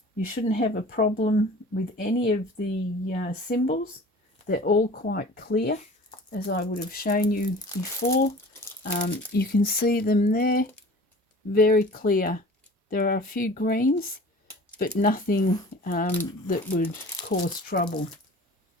you shouldn't have a problem with any of the symbols. They're all quite clear, as I would have shown you before. You can see them there, very clear. There are a few greens, but nothing that would cause trouble.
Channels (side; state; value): both; normal; correlation 0.43